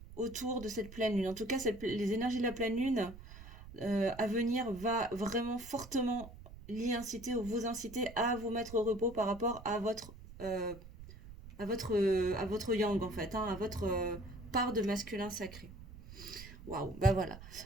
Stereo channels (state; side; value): noise; right; rumble, 16 dB below the sound